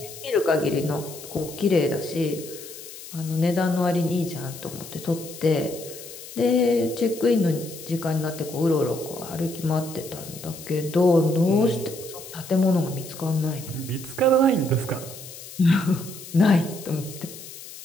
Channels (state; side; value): noise; left; hiss, 14 dB below the sound